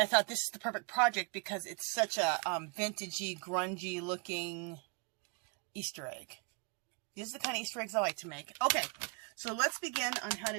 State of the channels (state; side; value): quieter; left; 33.0 dB